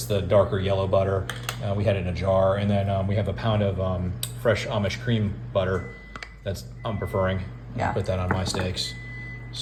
the darker yellow butter. We had it in a jar. And then we have a pound of fresh Amish cream butter that's I'm preferring. Yeah. I'll put that on my steaks.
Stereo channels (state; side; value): identical; both; correlation 1.00